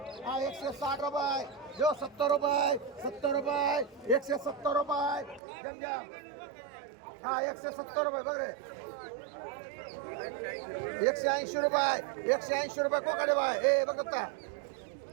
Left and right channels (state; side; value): drops out; left; at 5.4 s